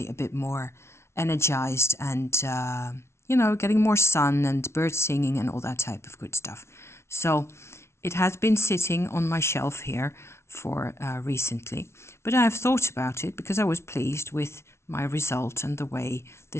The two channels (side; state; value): right; late; 0.13 ms